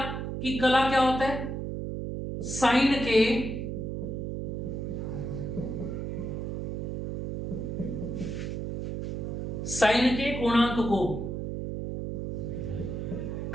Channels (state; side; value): noise; right; hum, 3 dB below the sound